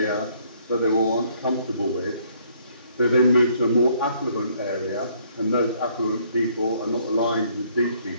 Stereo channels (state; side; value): inverted; both; correlation -0.65